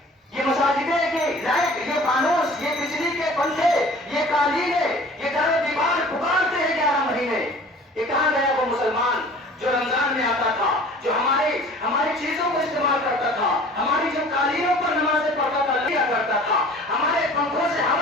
یہ مساجدیں کی لائٹ، یہ فانوس، یہ بجلی کے پنکھے، یہ قالینیں، یہ در و دیوار پکارتے ہیں 11 مہینے. یہ کہاں گیا وہ مسلمان جو رمضان میں آتا تھا، جو ہماری چیزوں کو استعمال کرتا تھا، ہماری جو قالینوں پر نمازیں پڑھتا تھا، لیا کرتا تھا، ہمارے پنکھوں سے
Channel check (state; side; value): normal; both; correlation 0.47